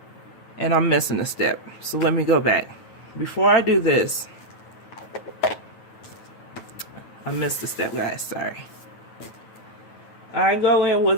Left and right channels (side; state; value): right; late; 9.1 ms